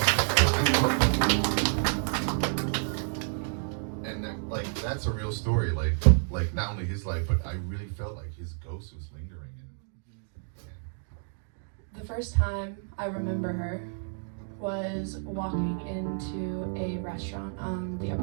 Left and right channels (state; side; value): silent; left; 58 dB below the other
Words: That's a real story, like not only his life, but I really felt like his ghost was lingering. The first time I remember her was walking into a restaurant on the